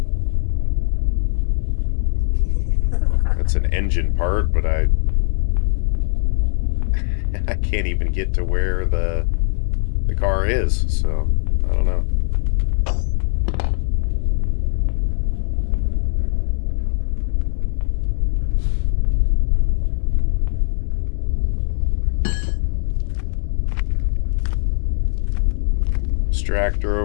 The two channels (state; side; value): silent; right; 66 dB below the other